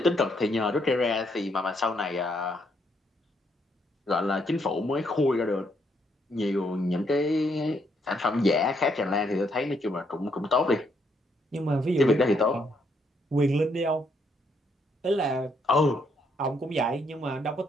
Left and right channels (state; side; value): normal; both; correlation 0.73